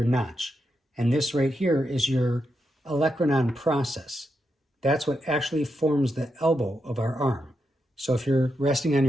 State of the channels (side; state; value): both; normal; correlation 0.84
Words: notch. And this right here is your olecranon process. That's what actually forms the elbow of our arm. So if you're resting on